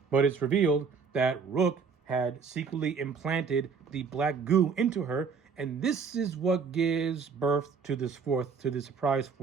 it's revealed that Rook had secretly implanted the black goo into her, and this is what gives birth to this surprise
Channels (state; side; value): quieter; left; 5.5 dB